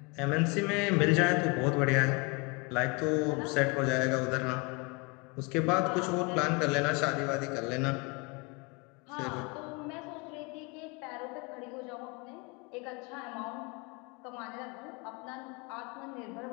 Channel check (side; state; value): right; quieter; 29.5 dB